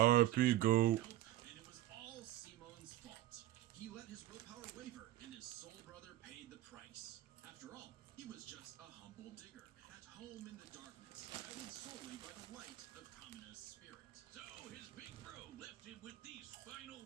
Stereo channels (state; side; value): quieter; left; 14.5 dB